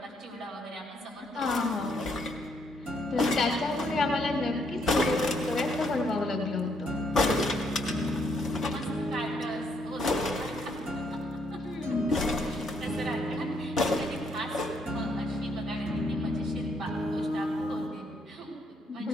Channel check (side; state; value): both; normal; correlation 0.72